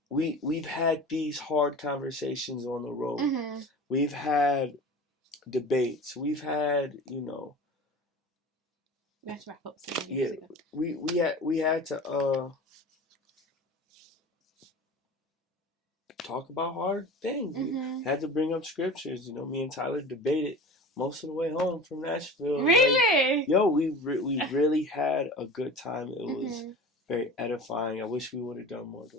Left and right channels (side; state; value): both; normal; correlation 0.36